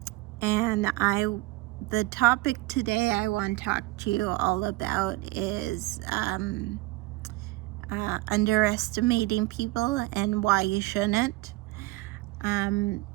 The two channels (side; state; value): left; quieter; 20.0 dB